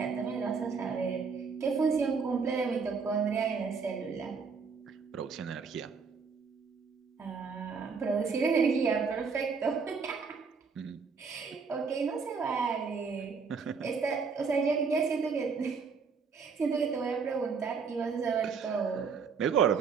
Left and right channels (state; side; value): quieter; left; 5.4 dB